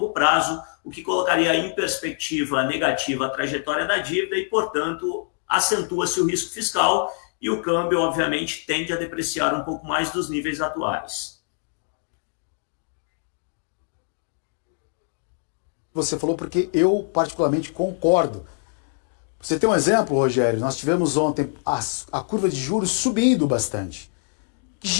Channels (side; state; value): right; silent; 62 dB below the other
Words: prazo, o que colocaria em perspectiva negativa a trajetória da dívida e, portanto, acentua-se o risco fiscal, e o câmbio, obviamente, tende a depreciar um pouco mais dos níveis atuais. Você falou porque eu particularmente concordo. Você tem um exemplo, Rogério? Nós tivemos ontem a curva de juros subindo bastante. Que